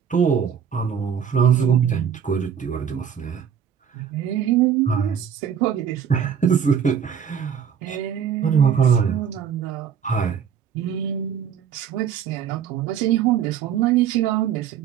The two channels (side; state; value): left; quieter; 8.1 dB